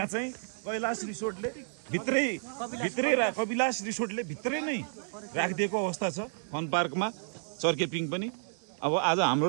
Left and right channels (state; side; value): silent; left; digital silence